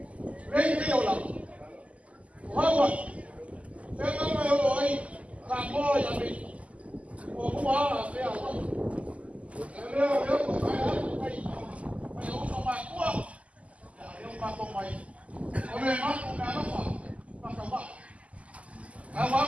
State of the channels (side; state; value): left; late; 0.066 ms